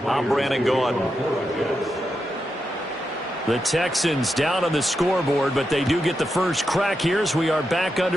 I'm Brandon Gordon. The Texans down on the scoreboard, but they do get the first crack here as we are back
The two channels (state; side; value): normal; both; correlation 0.86